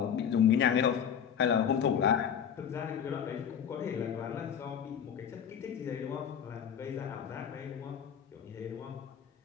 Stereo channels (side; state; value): right; quieter; 8.2 dB